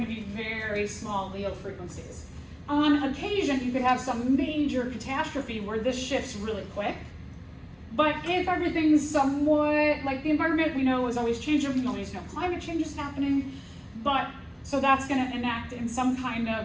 to be very small allele frequencies. On occasion, you could have some major catastrophe where this shifts really quick. But if everything's somewhat, like the environment we know is always changing, we always know climate change is happening, but so that's going to enact in some kind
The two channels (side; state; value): both; identical; correlation 1.00